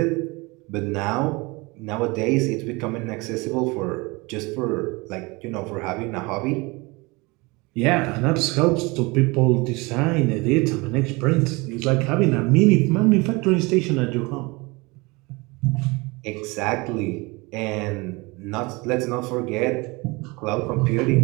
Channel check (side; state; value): left; quieter; 25.4 dB